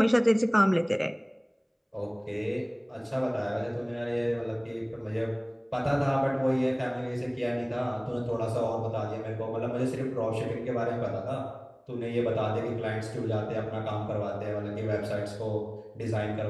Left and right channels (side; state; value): both; identical; correlation 1.00